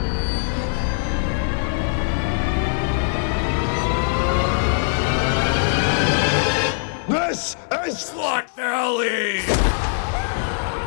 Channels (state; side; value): silent; right; 60 dB below the other